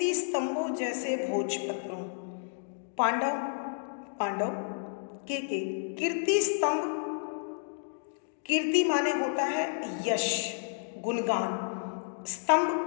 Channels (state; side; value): silent; right; digital silence